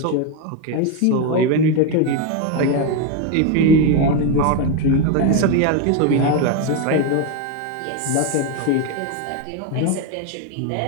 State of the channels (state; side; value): different; both; correlation 0.02